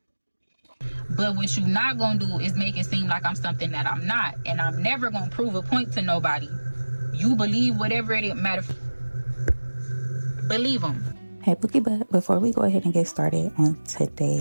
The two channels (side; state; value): both; inverted; correlation -1.00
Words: But what you not gonna do is make it seem like I'm something that I'm not, and I'm never gonna prove a point to nobody. You believe whatever it matter. Believe them. Hey BookieButt, before we go ahead and get started on